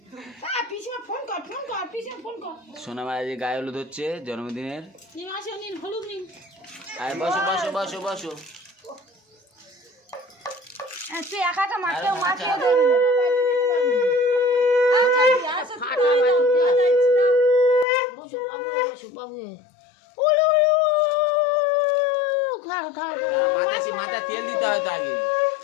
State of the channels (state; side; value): drops out; right; at 17.9 s